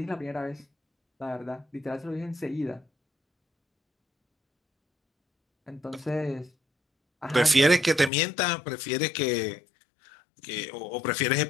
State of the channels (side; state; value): right; drops out; at 8.1 s